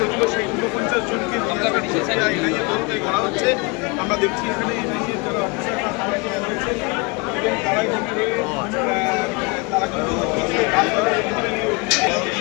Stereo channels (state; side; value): quieter; right; 28.9 dB